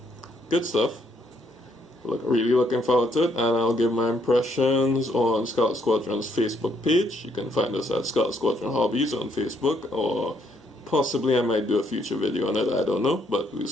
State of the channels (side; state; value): both; normal; correlation 0.71